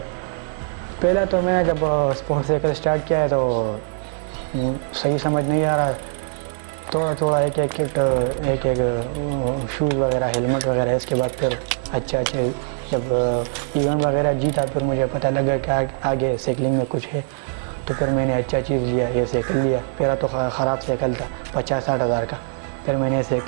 پہلا تو میں نے جب اسپورٹ سائیکل اسٹارٹ کیا ہے تو صحیح سمجھ نہیں آ رہا، تھوڑا تھوڑا ایک ایک کٹ، ایک ایک شوز وغیرہ، ہیلمٹ وغیرہ. اس کے بعد پھر اچھا جب ایونٹ وغیرہ جیتا، پھر مجھے پتہ لگا کہ آگے سائیکلنگ میں کچھ ہے، تو پھر میں نے اچھا چیز لیا، یہ سائیکل لیا. پہلا تو خراب سائیکل تھا 50-60 ہزار کا، پھر میں نے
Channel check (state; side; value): silent; left; 64 dB below the other